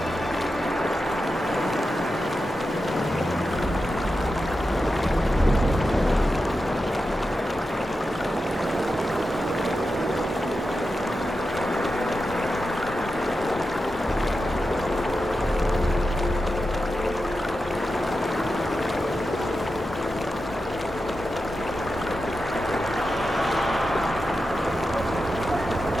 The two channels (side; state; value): both; normal; correlation 0.90